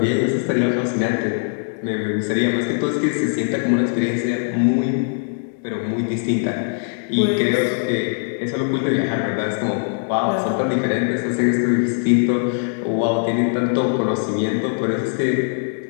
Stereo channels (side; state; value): right; silent; digital silence